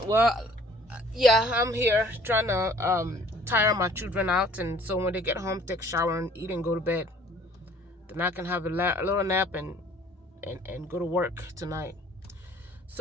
well, yeah, I'm here trying to tire my children out, and so when they get home, take a shower and eat and go to bed. Then I can have a little nap and go to work tonight.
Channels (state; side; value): normal; both; correlation 0.54